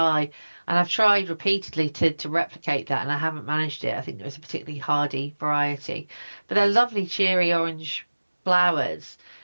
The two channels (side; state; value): both; inverted; correlation -1.00